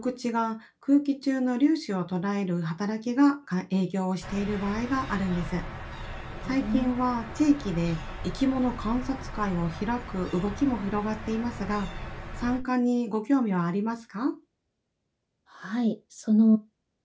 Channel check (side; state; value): both; identical; correlation 1.00